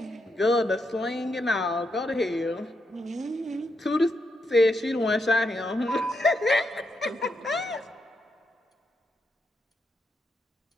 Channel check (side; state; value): both; normal; correlation 0.82